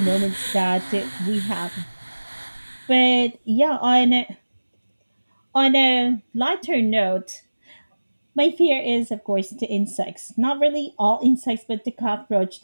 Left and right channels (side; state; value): both; inverted; correlation -1.00